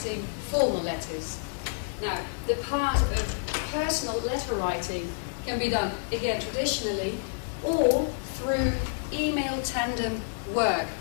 formal letters. Now, the part of personal letter writing can be done, again, traditionally or through email tandem work.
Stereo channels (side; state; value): right; silent; digital silence